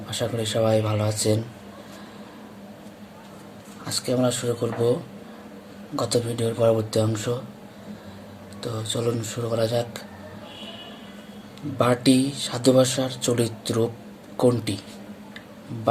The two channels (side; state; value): both; identical; correlation 1.00